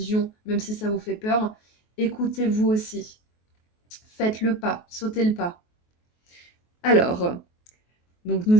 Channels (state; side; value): late; right; 23 ms